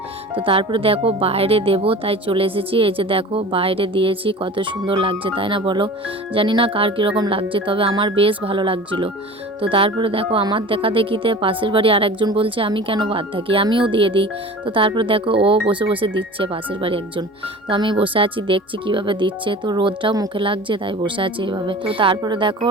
তো তারপরে দেখো বাইরে দেবো, তাই চলে এসেছি। এই যে দেখো বাইরে দিয়েছি, কত সুন্দর লাগছে তাই না বলো? জানি না কার কীরকম লাগছে, তবে আমার বেশ ভালো লাগছিলো। তো তারপরে দেখো আমার দেখা দেখিতে পাশের বাড়ি আর একজন বলছে আমি কেন বাদ থাকি, আমিও দিয়ে দিই। তো তারপরে দেখো ও বসে বসে দিচ্ছে, পাশের বাড়ি একজন। তো আমি বসে আছি দেখছি কিভাবে দিচ্ছে, তো রোদটাও মুখে লাগছে তাই বসে আছি এইভাবে। তো তারপরে দেখো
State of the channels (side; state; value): both; normal; correlation 0.38